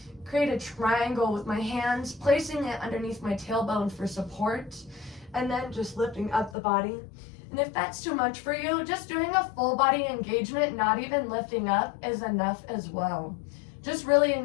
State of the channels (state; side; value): drops out; right; at 6.6 s